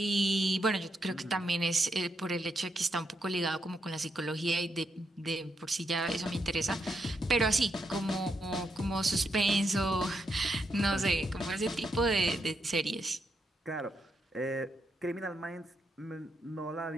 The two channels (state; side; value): normal; both; correlation 0.81